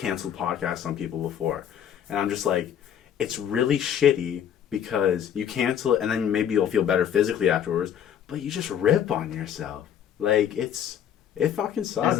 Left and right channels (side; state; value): right; quieter; 9.3 dB